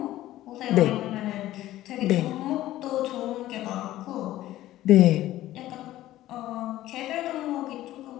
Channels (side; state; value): right; quieter; 14.7 dB